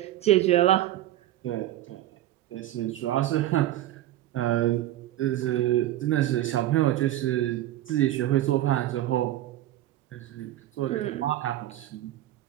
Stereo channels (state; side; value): quieter; left; 14.0 dB